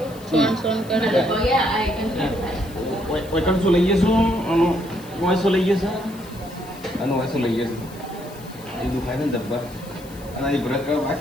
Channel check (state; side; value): noise; left; hiss, 21 dB below the sound